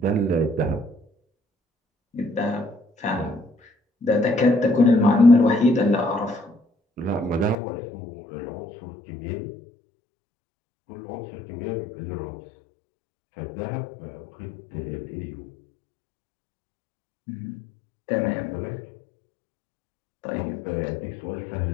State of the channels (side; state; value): right; drops out; at 7.6 s